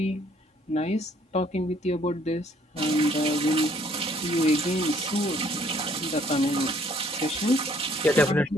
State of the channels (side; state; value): both; normal; correlation 0.62